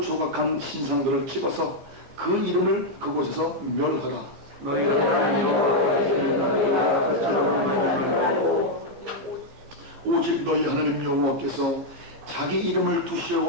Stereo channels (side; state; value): left; late; 15 ms